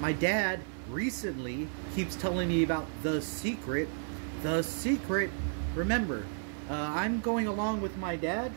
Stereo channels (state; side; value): silent; left; digital silence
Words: dad recently keeps telling me about The Secret. The Secret. Remember, I'm going along with my dad